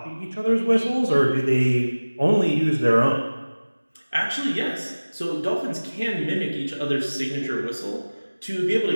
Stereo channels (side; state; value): both; inverted; correlation -1.00